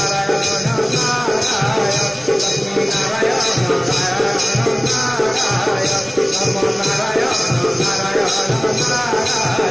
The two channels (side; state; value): left; noise; rumble, 30 dB below the sound